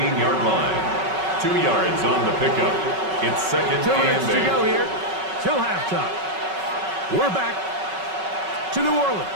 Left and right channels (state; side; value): late; left; 5.3 ms